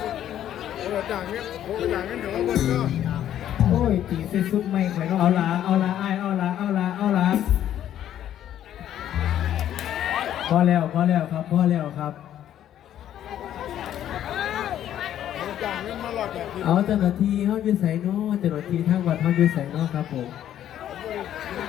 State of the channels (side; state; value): right; quieter; 11.2 dB